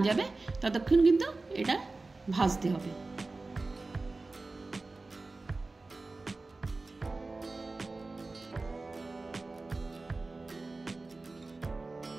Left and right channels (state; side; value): quieter; left; 3.4 dB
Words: যাবে ততক্ষণ কিন্তু এটা ভাজতে হবে।